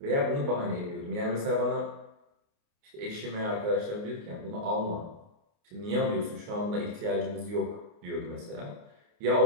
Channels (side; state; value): left; late; 29 ms